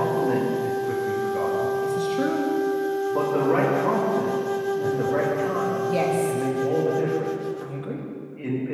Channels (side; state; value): both; identical; correlation 1.00